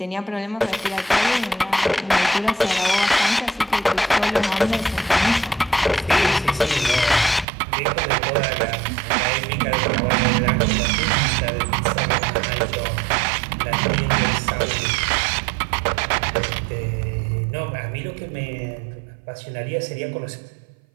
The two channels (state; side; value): drops out; left; at 7.5 s